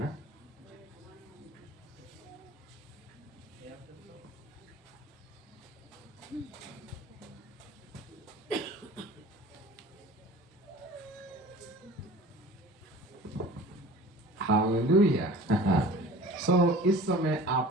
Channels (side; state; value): both; normal; correlation 0.42